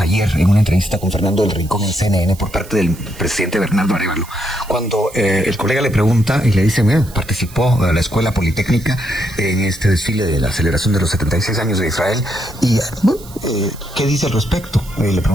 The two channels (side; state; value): right; noise; hiss, 20 dB below the sound